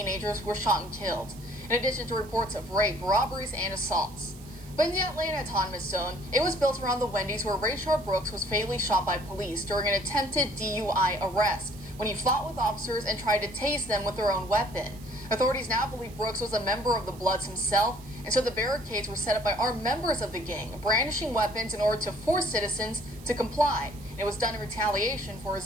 were shot and killed, in addition to reports of rape, robberies, and assaults. But in the Atlanta Autonomous Zone, it was built around the Wendy's where Rayshard Brooks was fatally shot by police during an attempted DUI arrest when he fought with officers and tried to tase them with their own weapon. Authorities now believe Brooks was a member of the Bloods himself, and so the barricades were set up by armed members of the gang, brandishing weapons in order to force citizens to comply. And it was done in retaliation for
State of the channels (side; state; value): right; noise; hiss, 22 dB below the sound